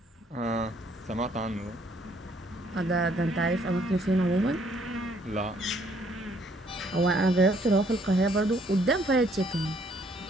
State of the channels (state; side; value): normal; both; correlation 0.66